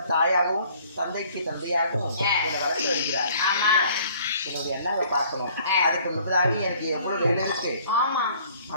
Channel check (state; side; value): inverted; both; correlation -0.56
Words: தாயாகவும் தந்தைக்கு தந்தையாகவும் என்னை வளர்த்து வருகிறார். என்னுடைய அண்ணாவை பார்க்கணும். அதுக்கு முன்னதாக எனக்கு எவ்வளவு வேலை இருக்கு.